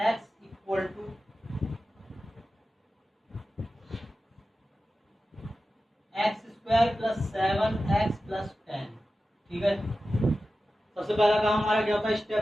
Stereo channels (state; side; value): normal; both; correlation 0.93